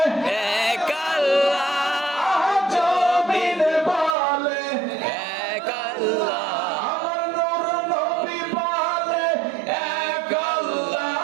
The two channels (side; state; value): left; drops out; at 4.2 s